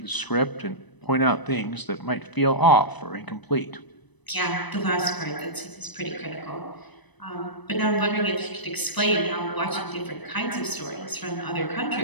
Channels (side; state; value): right; late; 1.0 ms